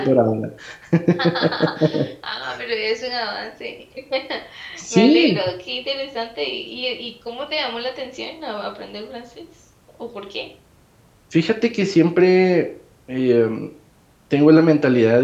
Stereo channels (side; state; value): both; identical; correlation 1.00